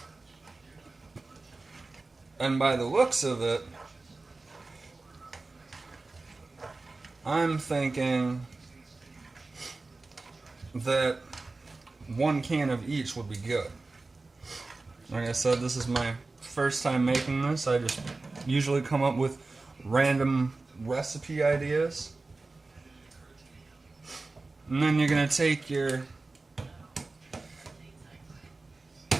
And by the looks of it, I'm thinking that one can of each would be good. Like I said, this is my first time making this. I just usually come up with random recipe ideas. And then you're going to take your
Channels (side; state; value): left; quieter; 3.5 dB